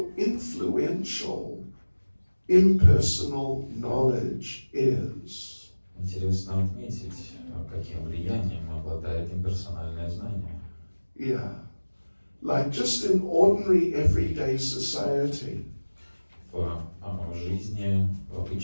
influential impersonal knowledge is. Интересно отметить, каким влиянием обладает имперсональное знание. Yeah. Like just in ordinary everyday society. В жизни, в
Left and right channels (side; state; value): both; inverted; correlation -1.00